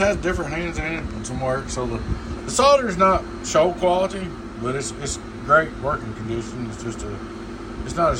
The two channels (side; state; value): both; identical; correlation 1.00